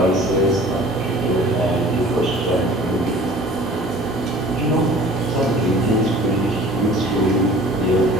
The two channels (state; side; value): normal; both; correlation 0.46